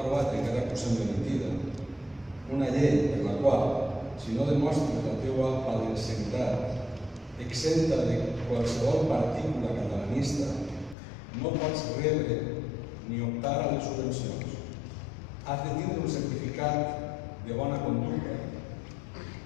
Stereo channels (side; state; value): right; drops out; at 11.0 s